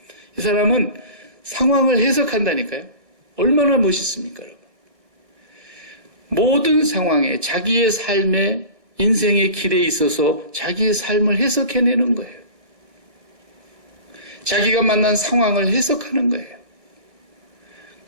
이 사람은 상황을 해석한다니까요. 얼마나 멋있습니까, 여러분? 모든 상황에 자기의 삶의 인생의 길에 있어서 자기의 삶을 해석해내는 거예요. 자기가 만난 상황을 해석하는 거예요.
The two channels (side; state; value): left; late; 1.6 ms